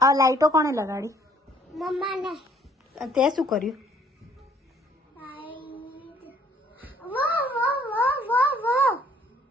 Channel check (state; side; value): normal; both; correlation 0.61